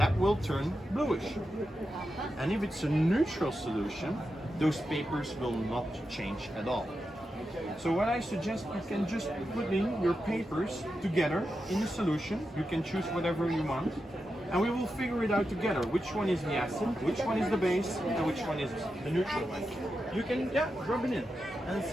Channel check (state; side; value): normal; both; correlation 0.89